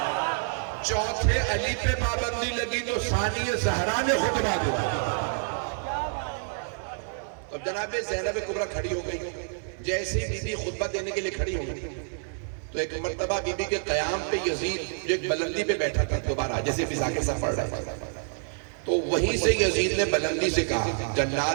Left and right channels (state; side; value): silent; left; digital silence